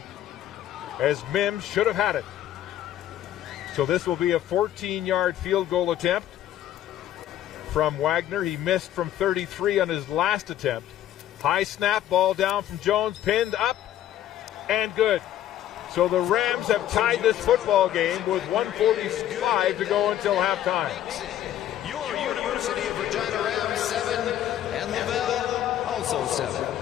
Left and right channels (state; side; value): quieter; right; 11.9 dB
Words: as Mims should have had it. So this will be a 14-yard field goal attempt from Wagner. He missed from 33 on his last attempt. High snap, ball down from Jones, pinned up, and good. So the Rams have tied this football game with 1:45 to go until halftime. Your University of Regina Rams 7 and Laval also 7.